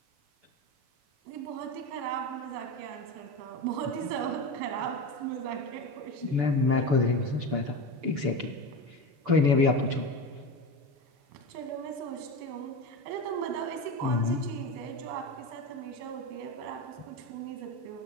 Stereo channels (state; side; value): late; left; 6.9 ms